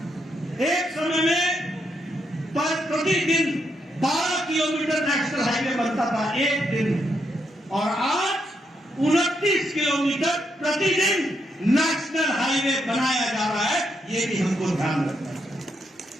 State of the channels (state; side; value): normal; both; correlation 0.79